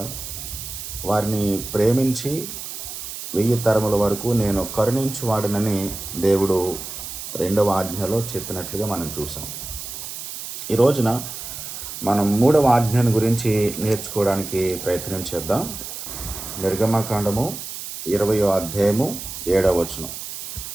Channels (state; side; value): noise; right; hiss, 9 dB below the sound